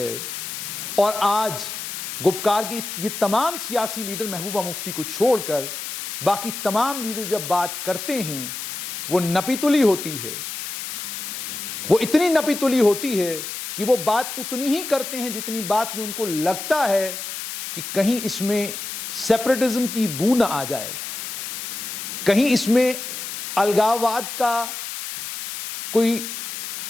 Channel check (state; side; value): noise; left; hiss, 7 dB below the sound